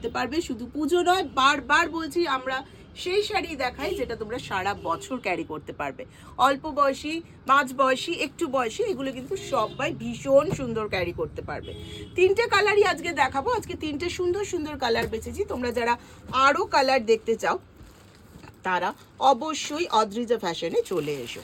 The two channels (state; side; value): identical; both; correlation 1.00